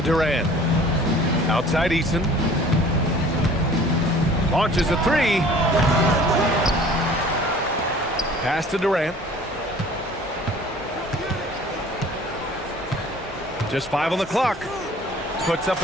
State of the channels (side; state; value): both; normal; correlation 0.49